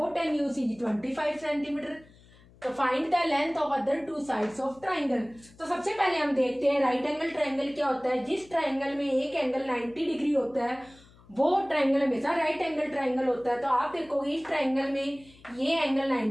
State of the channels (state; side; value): noise; left; hum, 26 dB below the sound